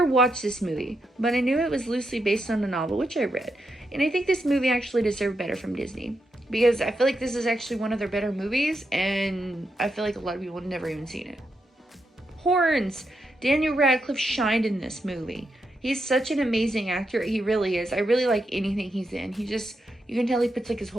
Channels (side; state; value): both; normal; correlation 0.83